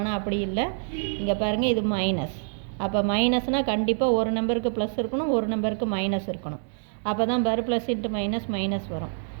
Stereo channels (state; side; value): silent; left; digital silence